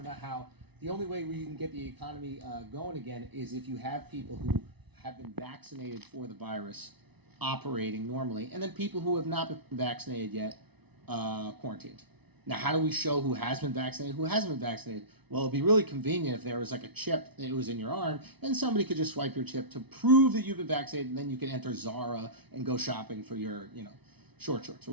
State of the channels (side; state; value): left; late; 0.99 ms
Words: how the only way where you can get the economy going again is if you have people who have been vaccinated for the virus operating normally, and then people who have not been vaccinated yet quarantined. Now, how do we show who has been vaccinated, who hasn't been vaccinated? Well, it'd be really convenient if there was like a chip that was in your arm, and somebody could just swipe your chip to prove that you've been vaccinated, and then you can enter Zara and go shopping for your, short shorts or